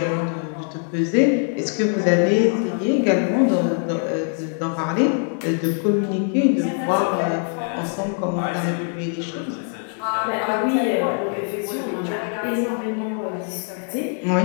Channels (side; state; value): right; silent; 57 dB below the other